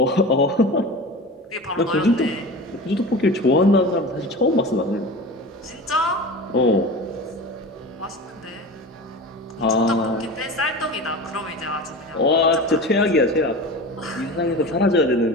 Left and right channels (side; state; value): both; normal; correlation 0.32